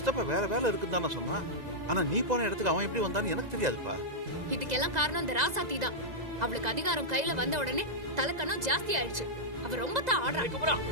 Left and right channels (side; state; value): left; late; 2.0 ms